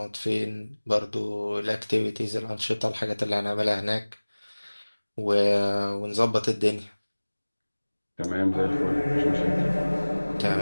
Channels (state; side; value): inverted; both; correlation -1.00